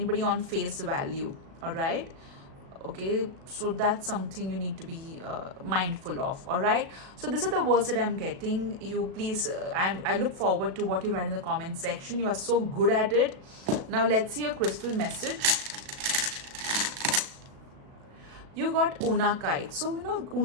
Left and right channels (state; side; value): late; left; 37 ms